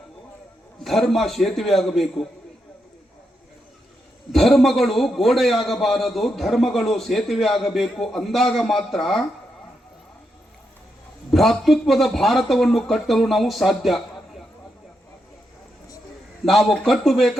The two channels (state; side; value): normal; both; correlation 0.83